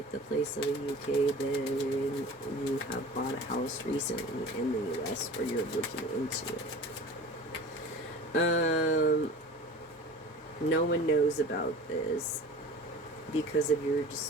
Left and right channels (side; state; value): both; normal; correlation 0.38